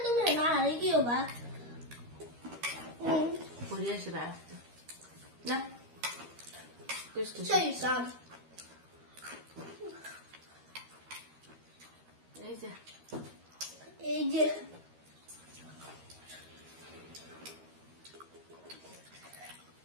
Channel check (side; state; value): left; late; 13 ms